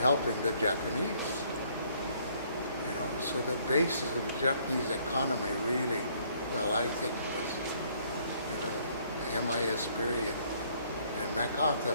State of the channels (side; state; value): both; inverted; correlation -0.64